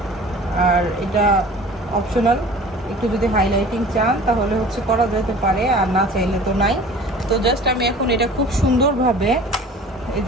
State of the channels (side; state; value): both; normal; correlation 0.44